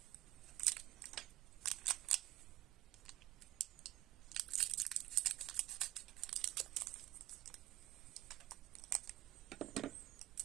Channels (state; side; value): quieter; left; 16.9 dB